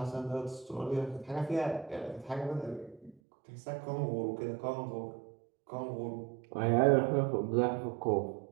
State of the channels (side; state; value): left; drops out; at 3.2 s